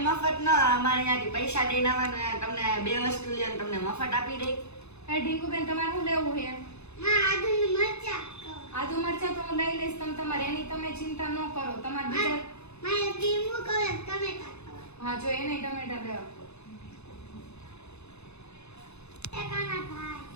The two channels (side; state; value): right; late; 0.81 ms